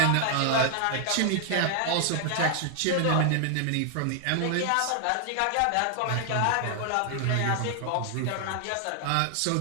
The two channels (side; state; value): both; different; correlation 0.00